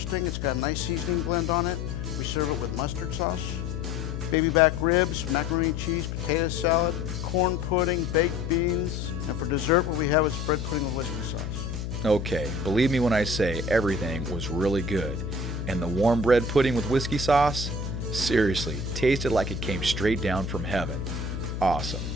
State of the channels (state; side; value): noise; left; hum, 5 dB below the sound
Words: It's got a nice seasoning blend on it. We serve it with mustard sauce. Baby back ribs, macaroni and cheese, potato salad, corn pudding, baked beans. And for dessert, what we have is bread pudding with whiskey sauce. Okay, believe me when I say everything was really good. And the warm bread pudding with whiskey sauce? Seriously, tasted like it came straight down from heaven. Awesome.